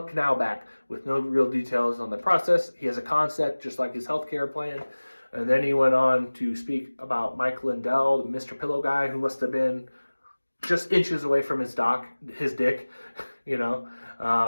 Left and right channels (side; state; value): both; inverted; correlation -1.00